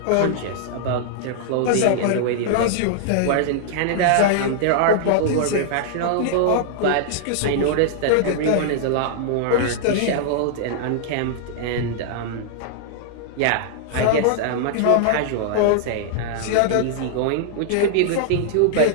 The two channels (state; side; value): different; both; correlation -0.01